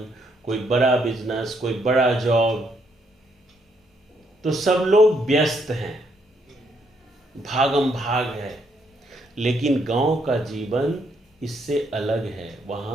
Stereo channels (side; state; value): both; normal; correlation 0.73